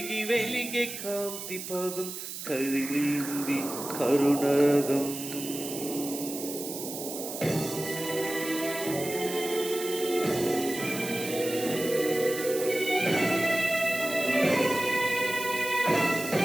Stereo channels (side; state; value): right; noise; hiss, 8 dB below the sound